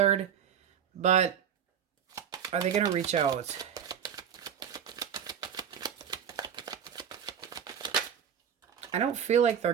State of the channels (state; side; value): quieter; left; 8.4 dB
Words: But are they going to reach out? I don't feel like they're